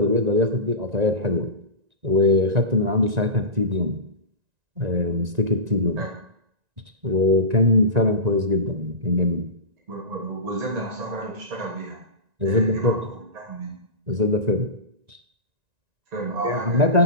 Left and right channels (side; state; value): left; late; 1.9 ms